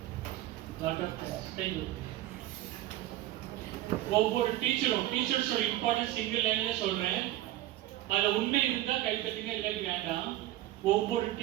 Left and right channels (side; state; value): left; quieter; 15.2 dB